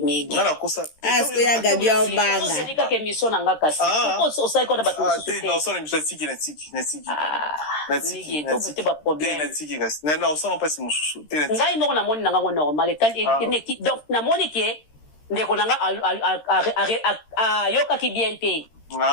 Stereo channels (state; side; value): late; right; 13 ms